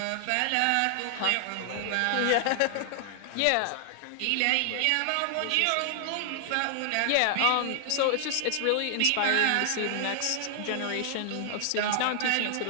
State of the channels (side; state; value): both; different; correlation 0.00